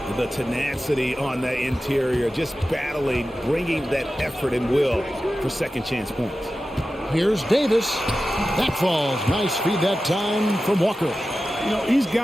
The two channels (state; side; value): normal; both; correlation 0.94